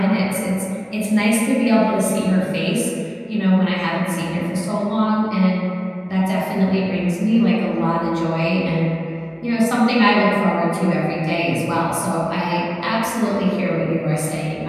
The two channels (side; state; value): both; identical; correlation 1.00